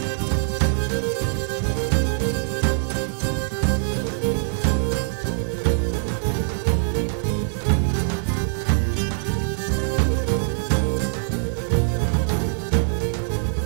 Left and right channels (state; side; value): silent; left; 63 dB below the other